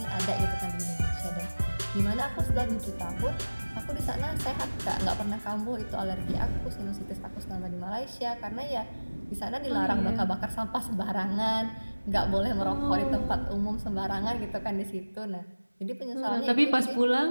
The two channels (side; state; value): both; inverted; correlation -1.00